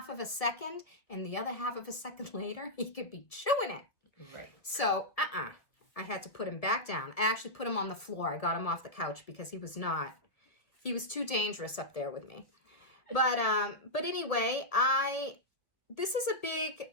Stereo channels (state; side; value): late; right; 1.8 ms